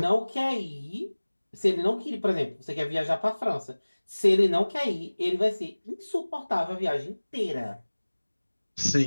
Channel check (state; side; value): inverted; both; correlation -1.00